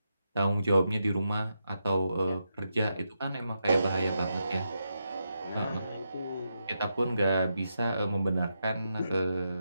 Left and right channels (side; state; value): both; inverted; correlation -0.85